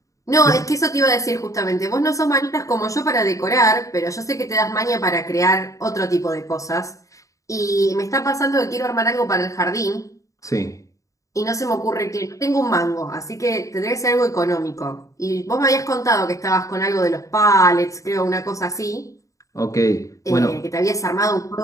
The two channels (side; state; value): right; late; 0.16 ms